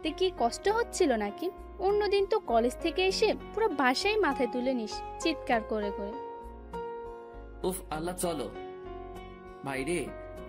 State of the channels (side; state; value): both; identical; correlation 1.00